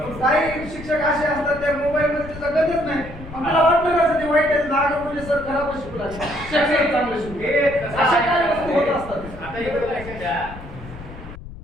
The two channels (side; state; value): left; noise; rumble, 14 dB below the sound